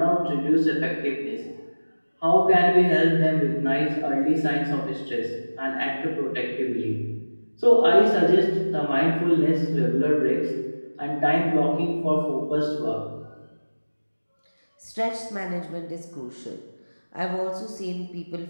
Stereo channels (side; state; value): both; inverted; correlation -1.00